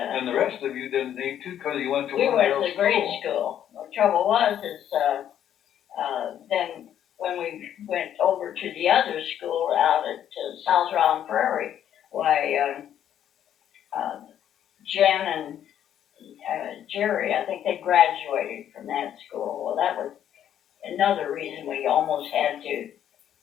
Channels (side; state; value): right; quieter; 10.2 dB